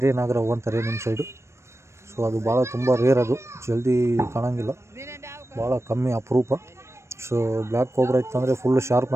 ನಾಗರಾವು ಅಂತಾರೆ ನಿಮ್ಮ ಸೈಡು. ಸೊ ಅದು ಭಾಳ ತುಂಬ ರೇರ್, ಅದು ಜಲ್ದಿ ಕಾಣೋಂಗಿಲ್ಲ, ಭಾಳ ಕಮ್ಮಿ ಅಪರೂಪ. ಸೊ ಬ್ಲ್ಯಾಕ್ ಕೋಬ್ರಾ ಇತ್ತಂದರೆ ಫುಲ್ ಶಾರ್ಪ್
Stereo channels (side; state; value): left; late; 0.13 ms